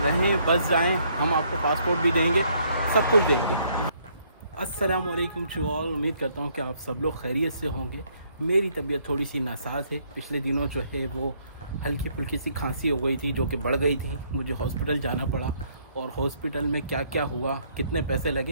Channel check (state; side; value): inverted; both; correlation -0.68